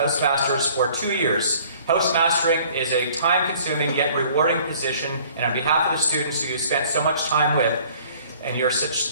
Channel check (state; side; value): inverted; both; correlation -0.54